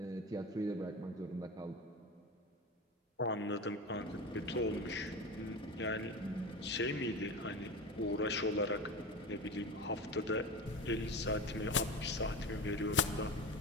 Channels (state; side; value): normal; both; correlation 0.27